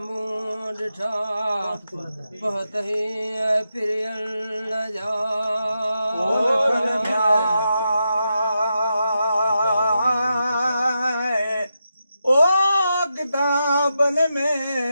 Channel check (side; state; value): both; inverted; correlation -0.86